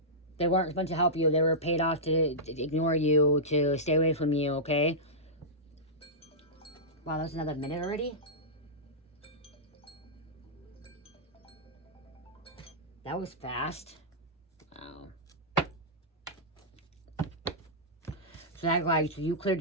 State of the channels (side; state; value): both; normal; correlation -0.13